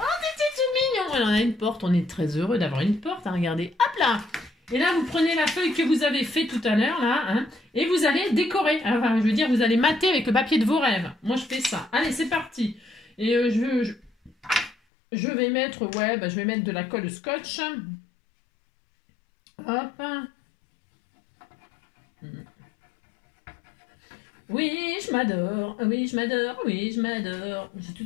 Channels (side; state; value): right; drops out; at 14.8 s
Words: tout mignon. Alors, on a une porte. On est très heureux d'avoir une porte. Hein, regardez. Hop là. Et là, vous prenez la feuille que vous avez fait tout à l'heure, là, hein, et vous allez décorer. Enfin, je veux dire, vous allez mater avec le papier de vos rêves. Moi, je fais ça. Allez, c'est parti. Et je vais mettre, ouais, bah, je vais mettre de la colle scotch. Hop. Oui, je m'adore. Oui, je m'adore. Oui, je m'adore. J'ai